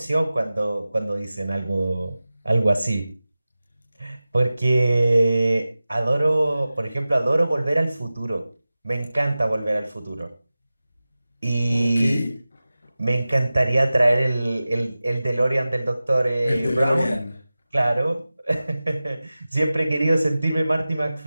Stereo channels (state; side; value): inverted; both; correlation -0.96